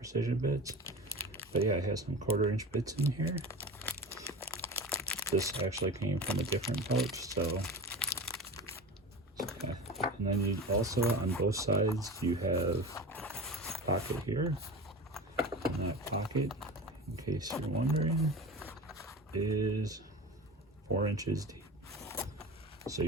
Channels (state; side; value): normal; both; correlation 0.31